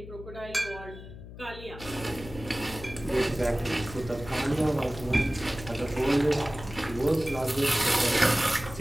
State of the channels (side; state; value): left; noise; hum, 14 dB below the sound